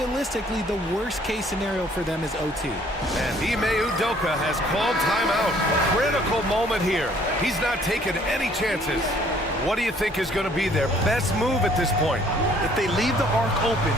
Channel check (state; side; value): normal; both; correlation 0.60